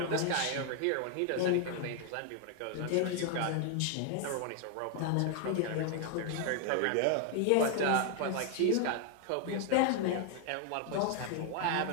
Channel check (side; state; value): both; different; correlation 0.00